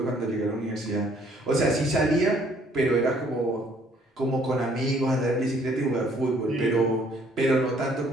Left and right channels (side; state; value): both; normal; correlation 0.62